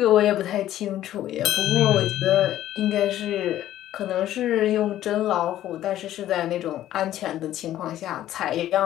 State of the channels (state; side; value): quieter; right; 12.9 dB